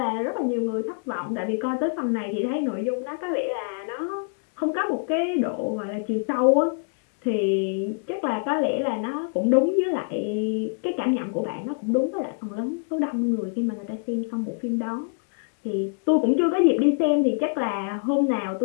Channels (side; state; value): right; silent; 61 dB below the other